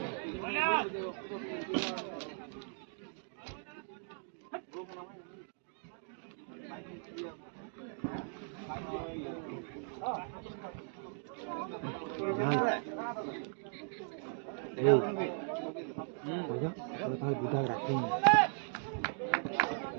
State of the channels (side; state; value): left; silent; 52 dB below the other